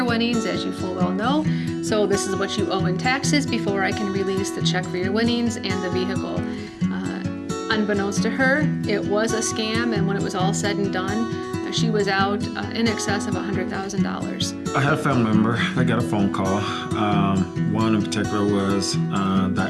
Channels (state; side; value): identical; both; correlation 1.00